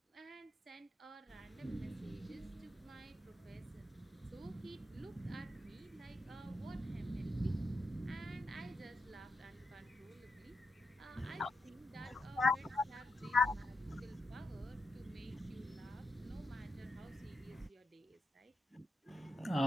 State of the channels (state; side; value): normal; both; correlation 0.84